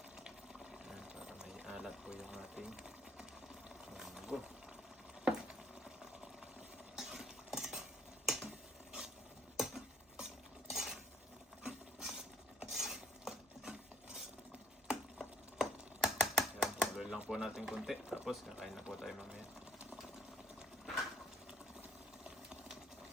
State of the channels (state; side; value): normal; both; correlation 0.63